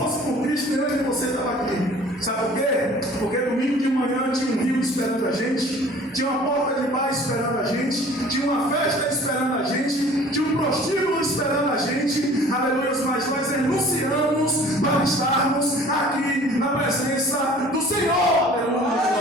por Cristo, nem eu nem você estava aqui. Sabe por quê? Porque domingo de manhã tinha um rio esperando a gente, tinha uma porta de paz esperando a gente, tinha uma festa esperando a gente, tinha um prostíbulo esperando a gente. Aleluia, mas nós renunciamos para estarmos aqui na presença do Senhor.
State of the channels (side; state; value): both; normal; correlation 0.49